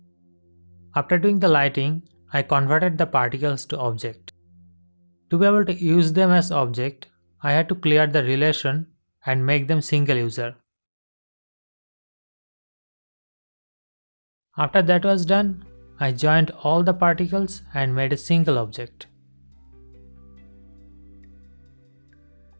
After doing the lighting, I converted the particles to object. To be able to use them as object, I had to clear the relation and make them single user. After that was done, I joined all the particles and made a single object.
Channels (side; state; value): both; inverted; correlation -1.00